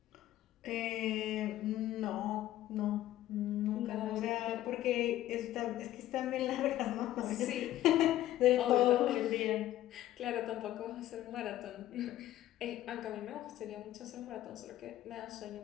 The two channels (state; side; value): quieter; right; 13.7 dB